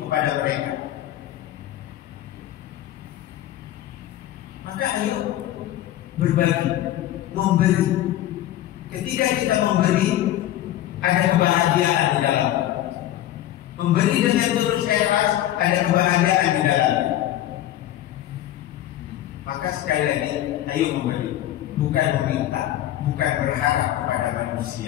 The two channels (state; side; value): quieter; right; 13.3 dB